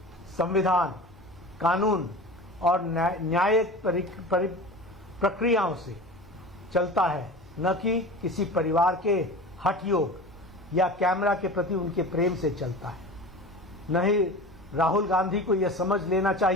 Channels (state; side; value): normal; both; correlation 0.34